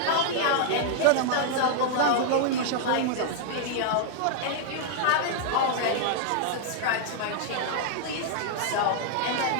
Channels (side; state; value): both; different; correlation -0.01